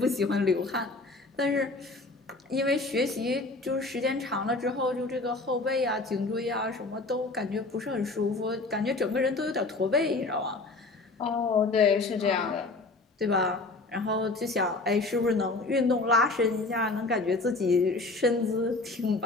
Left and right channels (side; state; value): right; quieter; 3.3 dB